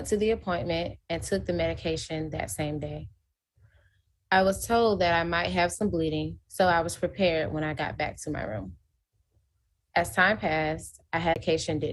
to the appointment and took the medication that same day. I was told that I might have some bleeding, so I was prepared when I got back to my room. As time passed, medication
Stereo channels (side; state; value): both; identical; correlation 1.00